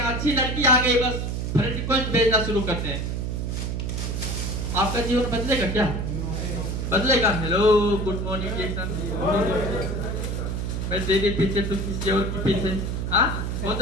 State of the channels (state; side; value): noise; right; hum, 2 dB below the sound